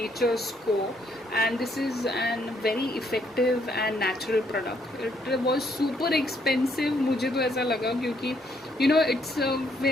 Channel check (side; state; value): both; normal; correlation 0.71